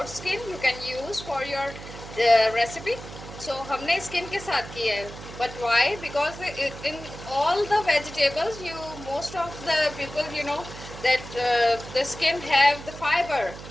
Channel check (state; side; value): noise; right; hum, 13 dB below the sound